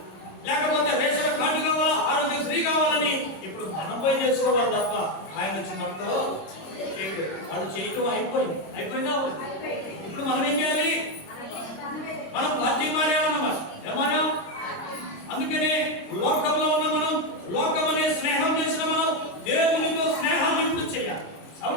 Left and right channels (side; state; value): right; late; 26 ms